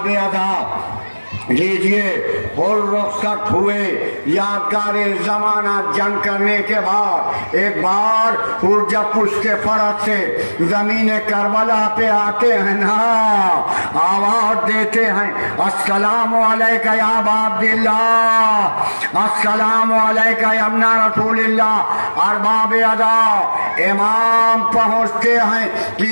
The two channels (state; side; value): inverted; both; correlation -1.00